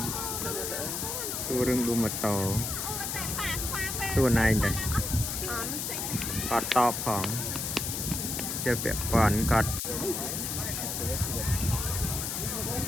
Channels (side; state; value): left; noise; hiss, 3 dB below the sound